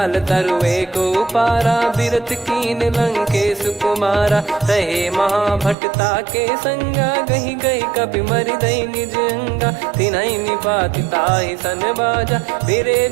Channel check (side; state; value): left; drops out; at 5.8 s